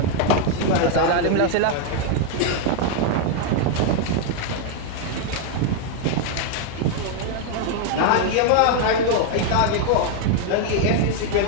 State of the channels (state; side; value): different; both; correlation 0.00